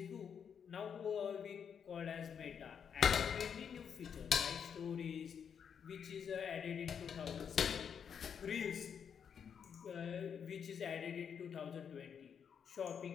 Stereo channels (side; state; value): right; quieter; 7.4 dB